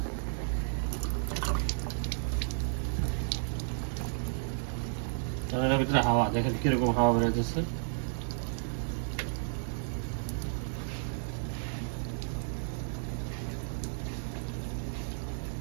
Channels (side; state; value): left; silent; 56 dB below the other